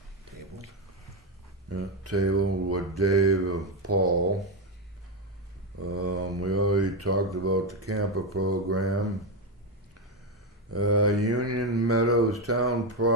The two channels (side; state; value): both; normal; correlation 0.09